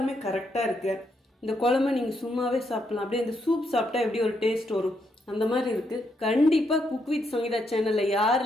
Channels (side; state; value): both; normal; correlation 0.78